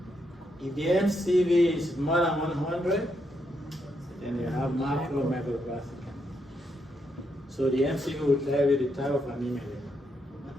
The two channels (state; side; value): normal; both; correlation 0.79